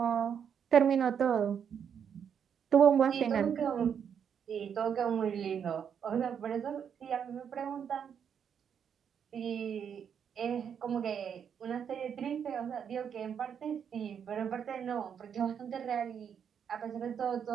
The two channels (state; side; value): quieter; left; 7.8 dB